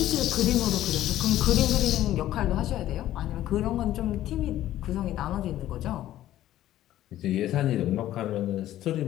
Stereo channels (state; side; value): quieter; right; 13.4 dB